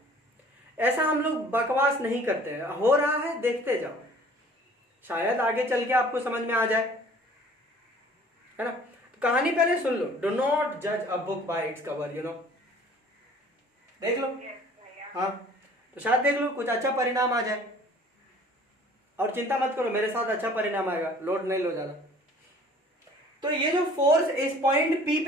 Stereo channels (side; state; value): both; normal; correlation 0.51